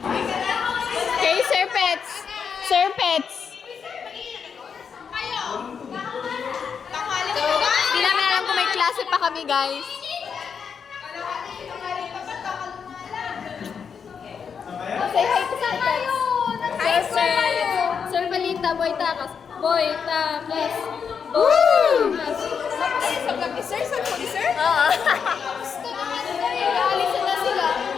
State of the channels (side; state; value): right; quieter; 6.6 dB